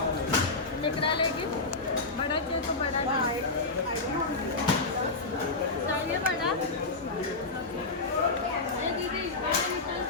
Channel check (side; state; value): right; quieter; 3.5 dB